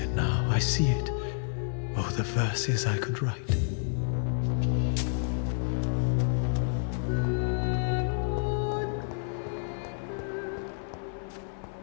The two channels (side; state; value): right; silent; 58 dB below the other